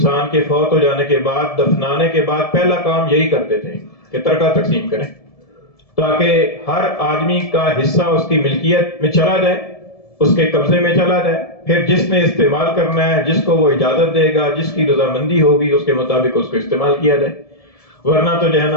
کے فوت ہو جانے کے بعد دفنانے کے بعد پہلا کام یہی کرتے تھے کہ ترکہ تقسیم کریں، تاکہ ہر آدمی کا حصہ اس کی ملکیت میں چلا جائے، اس کے قبضے میں چلا جائے، پھر جس نے استعمال کرنا ہے، جس کو وہ اجازت دے گا، جس کی رضامندی ہوگی، اس کے مطابق اس کو استعمال کیا جائے، ورنہ تو جو ہے نا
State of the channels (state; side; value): late; right; 1.7 ms